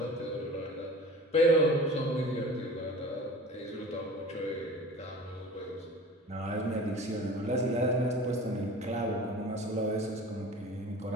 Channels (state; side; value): normal; both; correlation 0.40